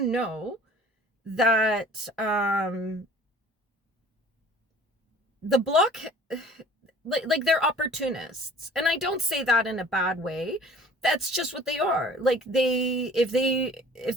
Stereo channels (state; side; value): normal; both; correlation 0.49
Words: that the Bloc, like they're opportunists, and I don't say that in a bad way. That's just what they are. Like if the